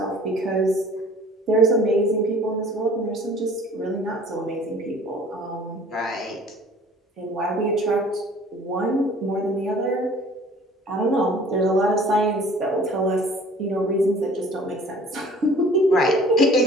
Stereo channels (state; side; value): normal; both; correlation 0.50